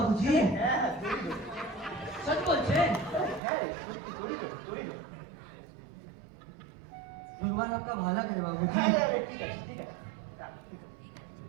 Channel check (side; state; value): left; drops out; at 3.4 s